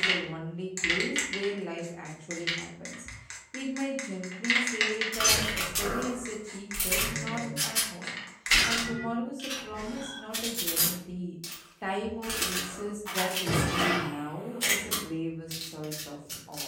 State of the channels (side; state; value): both; identical; correlation 1.00